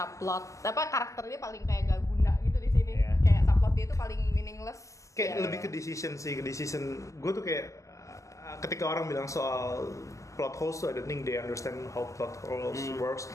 Apa karakternya paling kayak gak guna gitu di sini. Kayak subplot dia itu paling meaningless. Kayak lebih ke decision. Gue tuh kayak ketika orang bilang soal plot holes tuh, I don't think they understand how plot holes works.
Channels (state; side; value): late; right; 0.15 ms